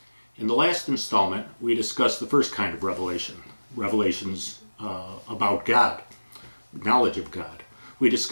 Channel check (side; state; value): both; inverted; correlation -1.00